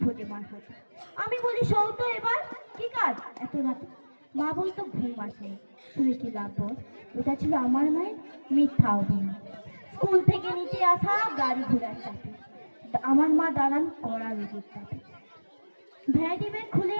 ফোটে মার হাতে। আমি বলি সৌতো এবার কি কাজ এত রাতে। মা বলতো ঘুম আসে, শুনে কি লাভ বল। ওটা ছিল আমার মায়ের মিথ্যা অভিনয়। স্কুল থেকে নিতে আসা গাড়ি ঘোড়ার চাপে আমার মা দাঁড়ান কড়া রোগের চাপে। ভ্যারাইটি ব্যাগ খুলে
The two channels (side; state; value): both; inverted; correlation -1.00